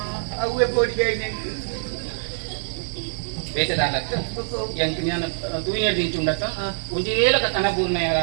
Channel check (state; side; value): silent; left; digital silence